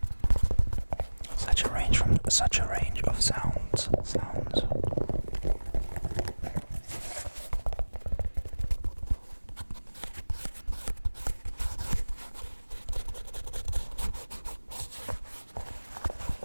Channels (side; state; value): both; inverted; correlation -1.00